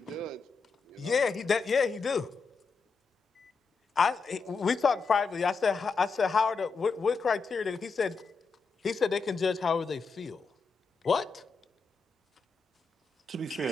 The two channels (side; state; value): right; quieter; 4.7 dB